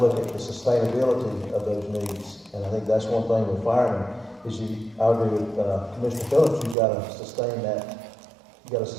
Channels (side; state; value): left; drops out; at 6.8 s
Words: at the sustainability of those needs. And I think that's one thing with firemen, is I agree with Commissioner Phillips, you've got to sustain that. You've got to